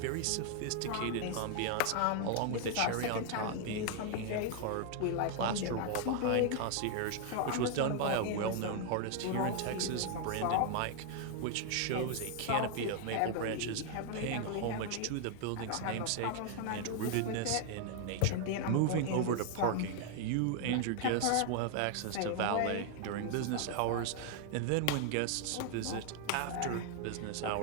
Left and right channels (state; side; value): different; both; correlation 0.00